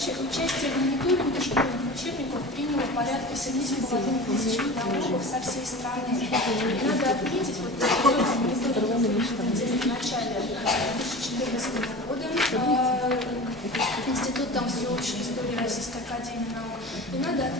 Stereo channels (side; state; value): both; normal; correlation 0.34